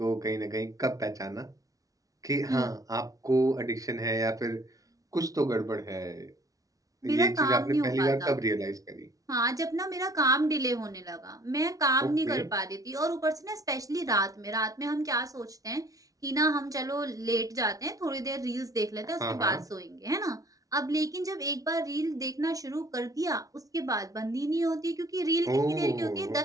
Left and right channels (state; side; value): late; left; 0.17 ms